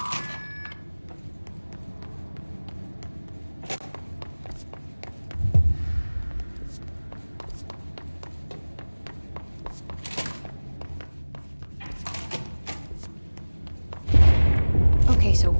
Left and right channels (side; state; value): both; inverted; correlation -1.00